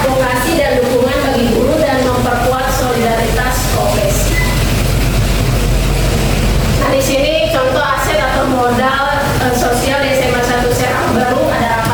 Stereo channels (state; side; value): identical; both; correlation 1.00